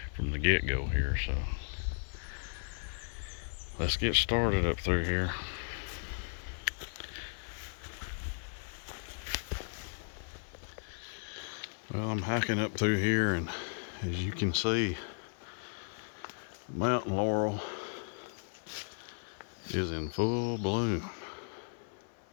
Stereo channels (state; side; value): silent; right; 54 dB below the other